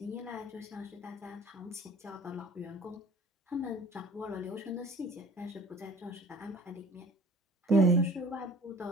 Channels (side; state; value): both; normal; correlation 0.47